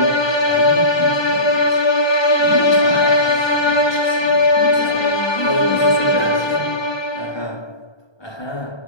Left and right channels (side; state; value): right; late; 1.2 ms